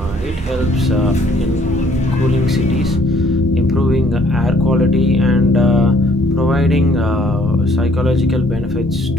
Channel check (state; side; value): normal; both; correlation 0.62